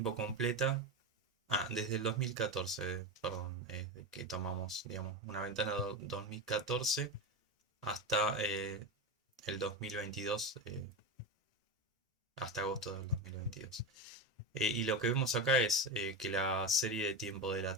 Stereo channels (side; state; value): both; normal; correlation 0.18